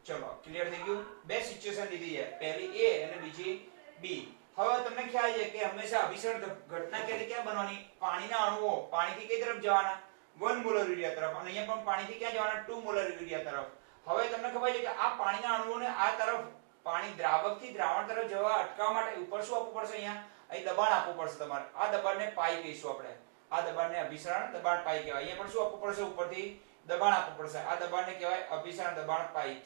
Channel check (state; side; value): silent; left; digital silence